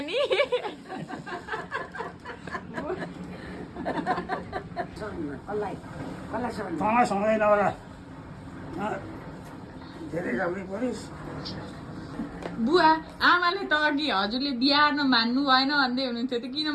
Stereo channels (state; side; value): identical; both; correlation 1.00